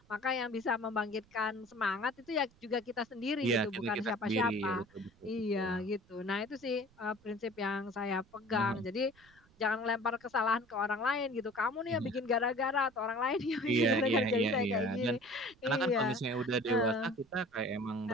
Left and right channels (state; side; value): noise; right; rumble, 29 dB below the sound